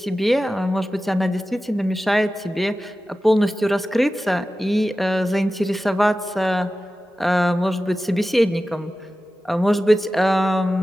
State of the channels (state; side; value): normal; both; correlation 0.94